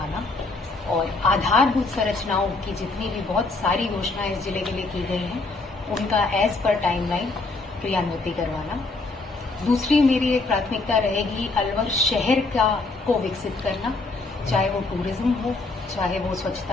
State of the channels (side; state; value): right; quieter; 3.5 dB